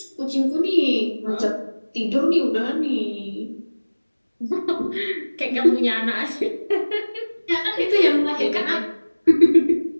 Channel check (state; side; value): inverted; both; correlation -1.00